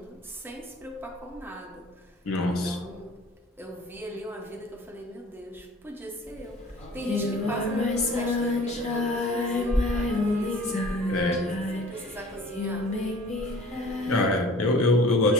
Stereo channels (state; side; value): normal; both; correlation 0.47